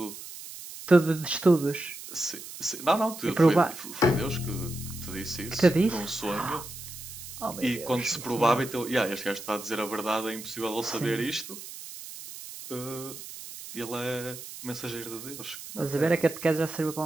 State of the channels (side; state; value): right; noise; hiss, 12 dB below the sound